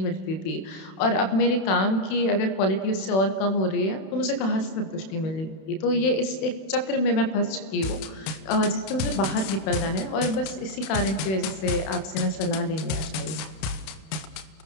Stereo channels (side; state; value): right; late; 31 ms